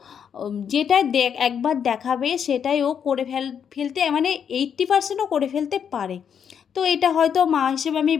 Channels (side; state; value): right; quieter; 7.8 dB